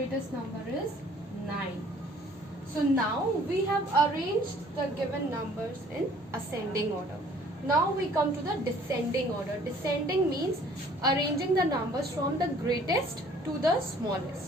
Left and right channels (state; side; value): normal; both; correlation 0.55